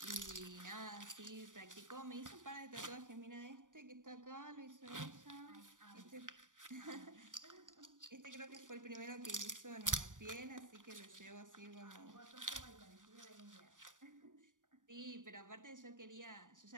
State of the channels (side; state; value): left; late; 0.88 ms